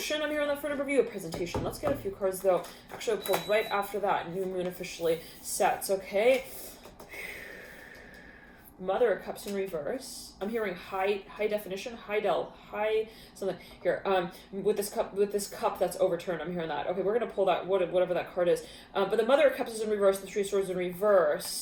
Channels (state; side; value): identical; both; correlation 1.00